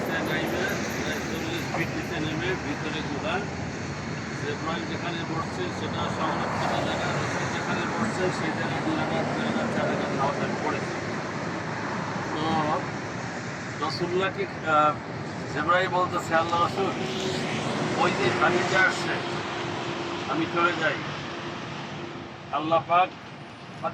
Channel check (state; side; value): identical; both; correlation 1.00